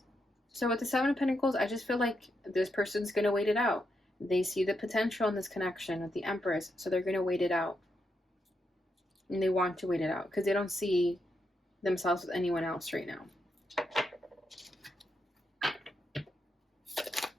So with the Seven of Pentacles, I just feel like this person's going to wait it out. They see the potential in this connection with the Empress, so they're going to wait it out. And they want to wait it out because they don't see themselves with anyone else right now.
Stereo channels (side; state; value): both; normal; correlation 0.82